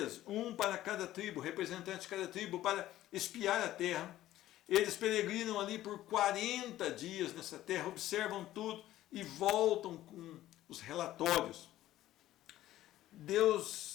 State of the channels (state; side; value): quieter; right; 14.3 dB